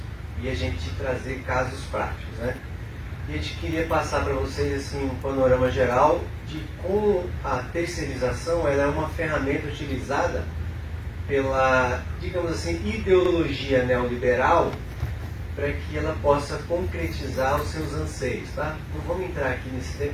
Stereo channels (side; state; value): both; identical; correlation 1.00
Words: e a gente trazer casos práticos, né? E a gente queria passar para vocês assim, um panorama geral de como a terceirização ela é uma ferramenta utilizada pela, digamos assim, ideologia neoliberal para que ela possa concretizar os seus anseios, tá? Não vamos entrar aqui nesse